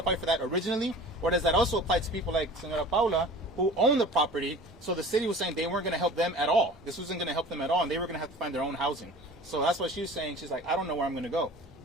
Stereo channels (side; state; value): both; normal; correlation 0.43